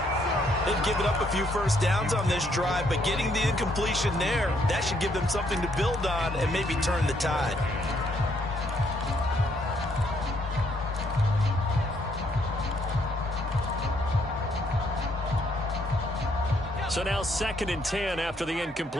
They've given up a few first downs on this drive, but getting the incompletion there, that should give them something to build on and maybe turn the tide. So now 2nd and 10 after the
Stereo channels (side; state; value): both; normal; correlation 0.70